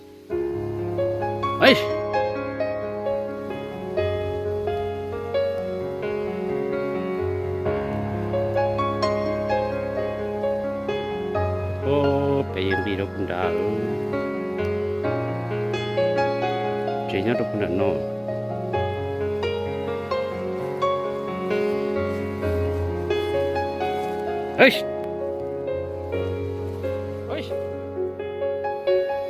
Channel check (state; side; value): identical; both; correlation 1.00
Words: ấy ô bây giờ đi đâu cũng đã chỉ nhớ đâu cũng đã nó ấy ấy